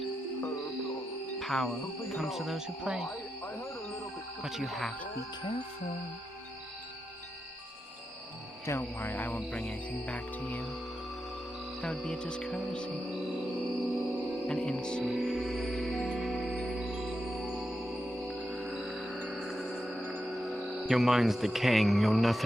Power comes to those who play. But you have to be careful. Don't worry, I won't bring anything back to you. That would be a discourtesy. An insult. Your mind's decaying. You're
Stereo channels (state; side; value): normal; both; correlation 0.87